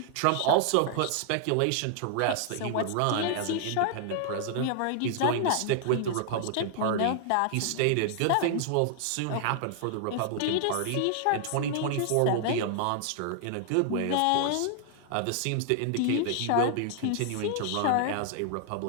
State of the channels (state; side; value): different; both; correlation 0.00